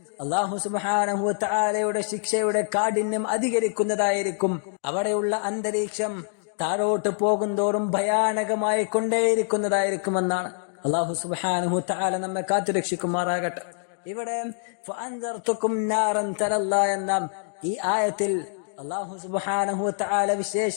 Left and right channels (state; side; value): silent; right; digital silence